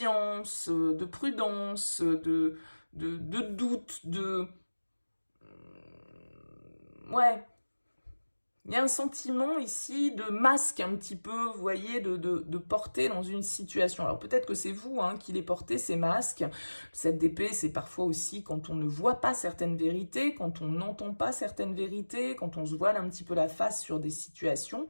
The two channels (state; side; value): inverted; both; correlation -1.00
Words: de prudence, de doute, ouais. Il y a un sentiment ici de masque un petit peu, vous voyez, de porter dans une situation. Alors peut-être que c'est vous hein, qui les portez, ces masques. Cette d'épée, c'est parfois aussi quand on ne voit pas certaines vérités, quand on n'entend pas certaines vérités, quand on se voile un petit peu la face sur des situations.